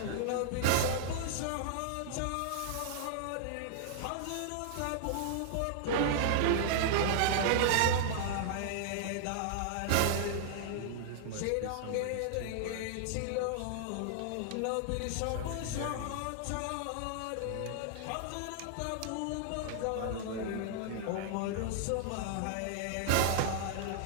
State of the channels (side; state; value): both; different; correlation -0.01